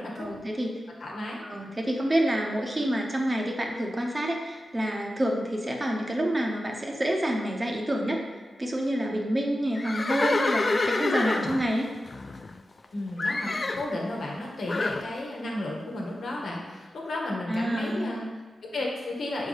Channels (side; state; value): both; normal; correlation 0.92